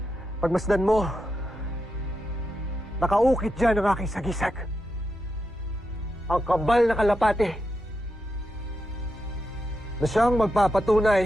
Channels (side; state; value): both; normal; correlation 0.86